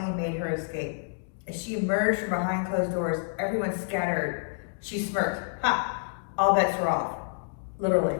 made her escape. As she emerged from behind closed doors, everyone scattered. She smirked. Ha! All bets were off. Literally.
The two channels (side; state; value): right; silent; digital silence